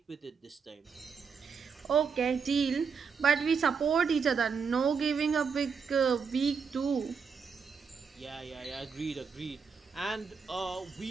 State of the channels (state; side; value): quieter; left; 5.8 dB